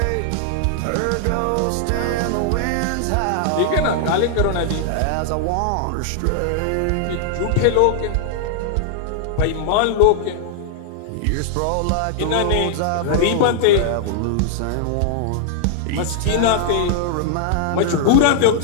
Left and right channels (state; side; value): different; both; correlation -0.01